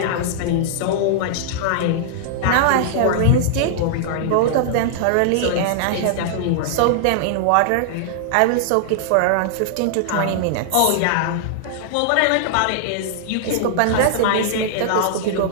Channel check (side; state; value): both; different; correlation -0.01